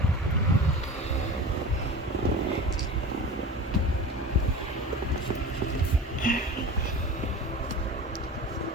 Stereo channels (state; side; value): normal; both; correlation 0.34